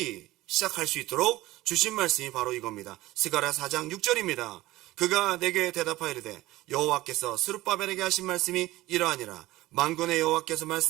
시작할 수 있도록 주신 말씀이 바로 이겁니다. 스가랴 4장 6절입니다. 그가 내게 대답하여 이르되 여호와께서 스룹바벨에게 하신 말씀이 이러하니라. 만군의 여호와께서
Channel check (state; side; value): quieter; left; 17.5 dB